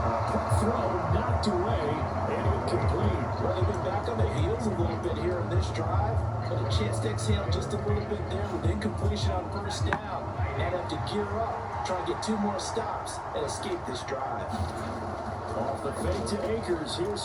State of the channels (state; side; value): identical; both; correlation 1.00